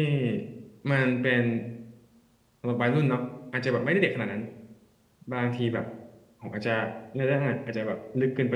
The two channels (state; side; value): identical; both; correlation 1.00